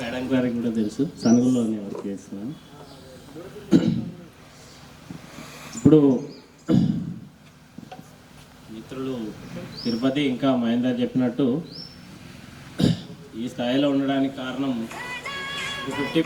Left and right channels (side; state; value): both; identical; correlation 1.00